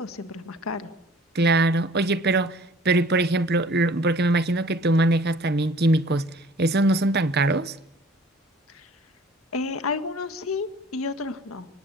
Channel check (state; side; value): normal; both; correlation 0.51